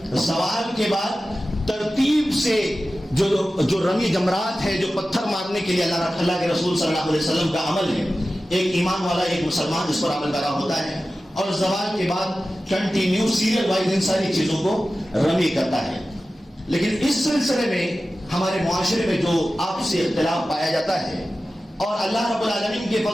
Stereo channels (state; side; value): normal; both; correlation 0.95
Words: سوال کے بعد ترتیب سے جو رمی جمرات ہے, جو پتھر مارنے کے لیے اللہ کے رسول صلی اللہ علیہ وسلم کا عمل ہے, ایک ایمان والا ایک مسلمان اس پر عمل کرا ہوتا ہے اور زوال کے بعد کنٹینیو سیریل وائز ان ساری چیزوں کو رمی کرتا ہے. لیکن اس سلسلے میں ہمارے معاشرے میں جو آپسی اختلاف پایا جاتا ہے, اور اللہ رب العالمین کے